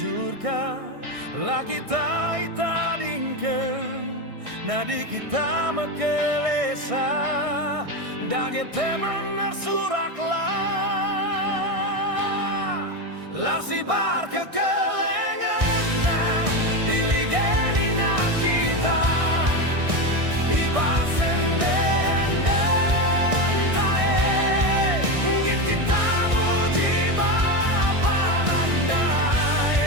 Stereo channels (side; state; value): left; late; 1.6 ms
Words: la kita itadingken nadi kita mekelesa dage teman nersuraklah larsi bar kekelengena iligenina kita ibasen den tae git kita muji bapa